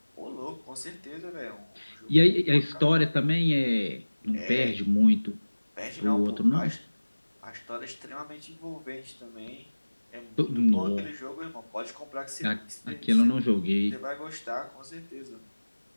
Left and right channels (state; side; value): inverted; both; correlation -1.00